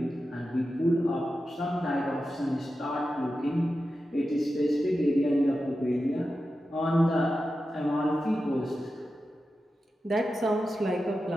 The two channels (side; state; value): both; normal; correlation 0.91